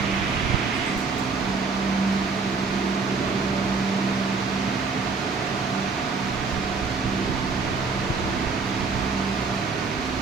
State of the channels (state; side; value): quieter; left; 4.5 dB